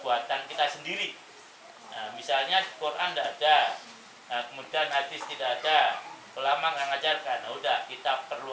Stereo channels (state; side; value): identical; both; correlation 1.00